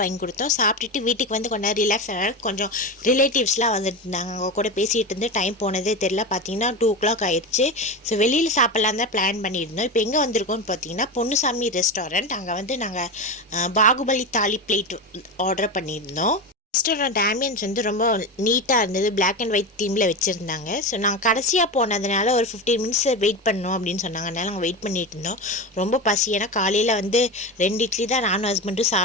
வாங்கி கொடுத்தோம். சாப்பிட்டுட்டு வீட்டுக்கு வந்து கொஞ்சம் ரிலாக்ஸ் ஆனால கொஞ்சம் ரிலேட்டிவ்ஸ்லாம் வந்துட்டு இருந்தாங்க. அவங்க கூட பேசிகிட்டு இருந்து டைம் போனதே தெரியல. பார்த்தீங்கன்னா 2 o'clock ஆயிடுச்சு. ஸோ வெளியில் சாப்பிட்லாம் தான் பிளான் பண்ணியிருந்தோம். இப்போ எங்கே வந்திருக்கோம்னு பார்த்தீங்கன்னா பொன்னுசாமி ரெஸ்டாரண்ட். அங்கே வந்து நாங்கள் பாகுபலி தாலி பிளேட் ஆர்டர் பண்ணியிருந்தோம். ரெஸ்டாரண்ட் ஆம்பியன்ஸ் வந்து ரொம்ப நீட்டாக இருந்தது. பிளாக் அண்ட் ஒயிட் தீமில் வச்சுருந்தாங்க. ஸோ நாங்கள் கடைசியாக போனதுனால ஒரு 15 minutes வெயிட் பண்ணோம் அப்படின்னு சொன்னாங்க. அதனால் நாங்கள் வெயிட் பண்ணிட்டு இருந்தோம். ரொம்ப பசி. ஏன்னா காலையில் வந்து 2 இட்லி தான் நானும் ஹஸ்பண்டும்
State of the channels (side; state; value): both; normal; correlation 0.21